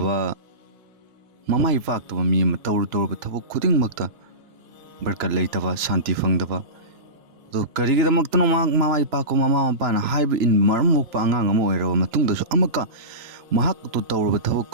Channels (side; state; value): left; late; 2.9 ms